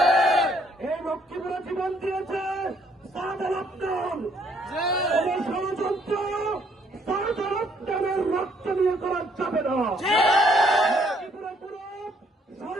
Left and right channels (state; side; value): normal; both; correlation 0.67